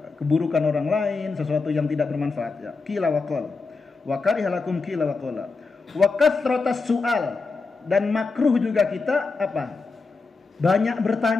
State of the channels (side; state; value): right; quieter; 4.2 dB